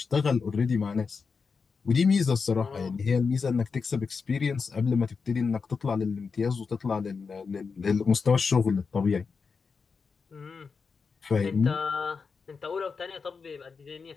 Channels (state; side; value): quieter; right; 5.2 dB